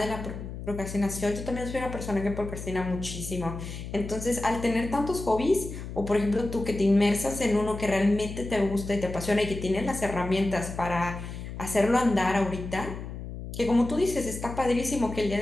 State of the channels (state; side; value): noise; left; hum, 9 dB below the sound